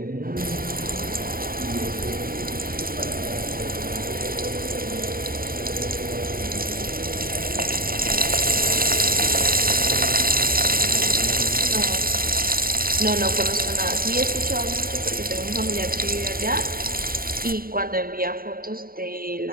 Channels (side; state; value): left; late; 0.43 ms